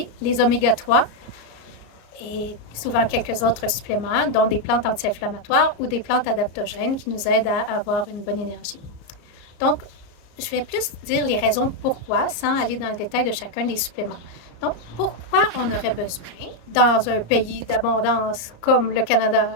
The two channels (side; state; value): right; late; 34 ms